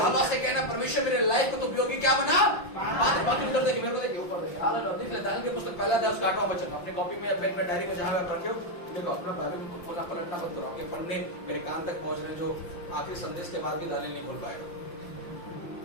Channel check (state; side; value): late; right; 5.8 ms